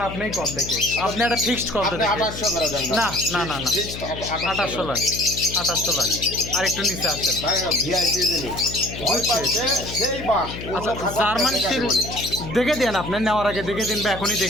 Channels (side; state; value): left; noise; hum, 10 dB below the sound